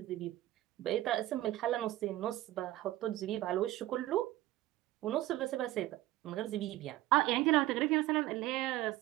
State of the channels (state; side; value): quieter; left; 15.8 dB